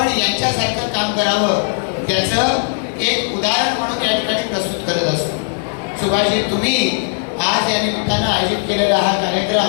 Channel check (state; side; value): silent; right; 66 dB below the other